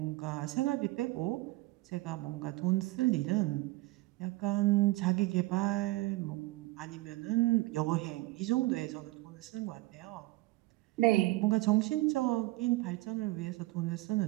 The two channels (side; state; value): left; quieter; 19.9 dB